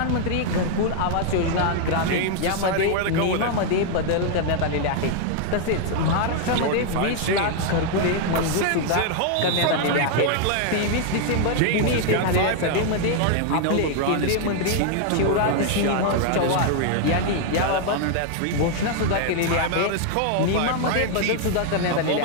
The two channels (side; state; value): both; different; correlation 0.00